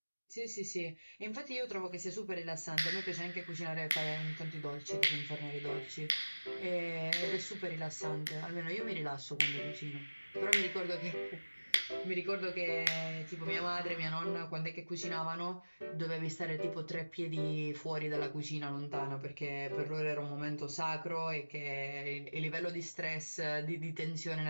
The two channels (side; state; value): both; inverted; correlation -1.00